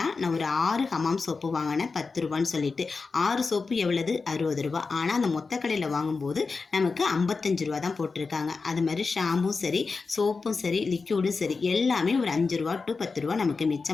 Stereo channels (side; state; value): right; quieter; 4.4 dB